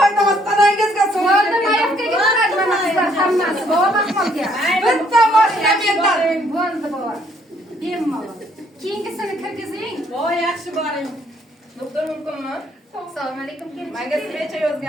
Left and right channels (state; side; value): normal; both; correlation 0.67